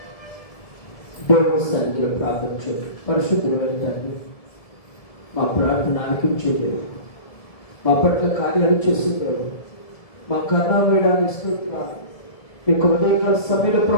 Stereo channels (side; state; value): right; late; 1.7 ms